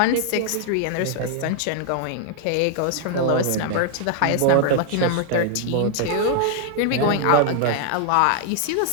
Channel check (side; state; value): both; different; correlation 0.00